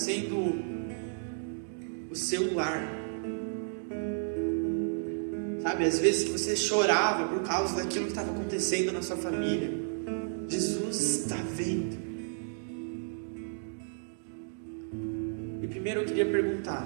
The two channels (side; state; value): left; silent; digital silence